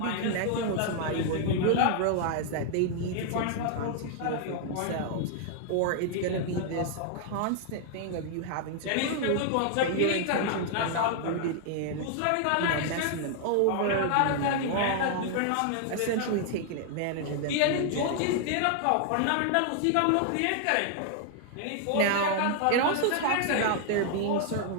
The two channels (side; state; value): both; different; correlation 0.00